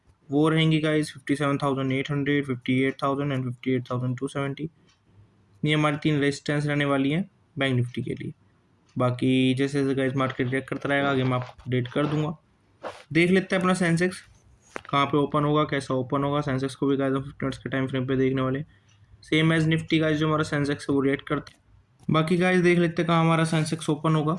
वो रहेंगी गाइस 57,800, 58,000 एंड 58,270। ये हमारी 3 रेजिस्टेंस रहने वाली हैं बैंक निफ्टी के लिए। बाकी जैसे जैसे गाइस मार्केट रिएक्ट करता रहेगा आगे मैं आपको अपडेट कर दूंगा। देख लेते हैं अपना सेंसेक्स कहाँ पे ओपन होगा, कैसा ओपन होगा। सेंसेक्स को भी गाइस हम 50 मिनट्स के टाइम फ्रेम पे देखने वाले, सेम एज निफ्टी गाइस जो हमारा सेंसेक्स है वो रिएक्ट करते हैं। बाकी गाइस देख लेते हैं कहाँ हमारा सेंसेक्स ओपन होगा,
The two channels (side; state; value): both; identical; correlation 1.00